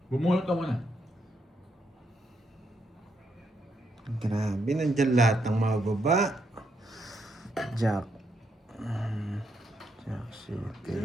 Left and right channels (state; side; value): normal; both; correlation 0.78